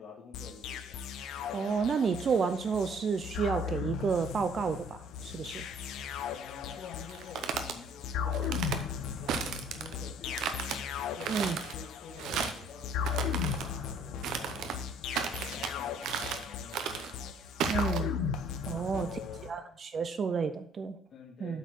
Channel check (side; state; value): both; normal; correlation 0.58